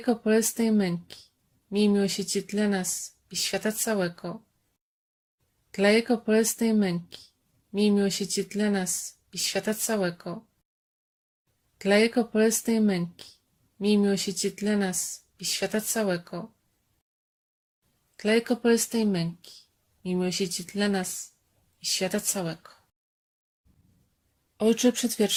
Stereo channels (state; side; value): identical; both; correlation 1.00